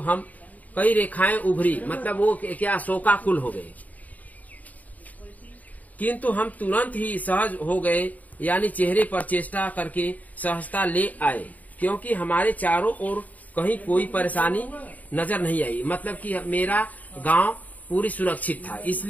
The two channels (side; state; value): right; late; 0.075 ms